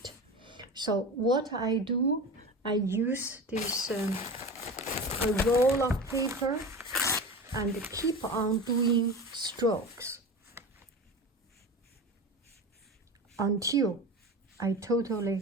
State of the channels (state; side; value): normal; both; correlation 0.30